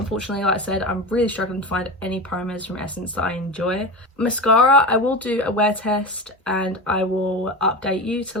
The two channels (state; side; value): normal; both; correlation 0.25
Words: like I said, I'm really struggling to find any primers from Essence that I enjoy. Mascara, I will do a wear test and I will update you to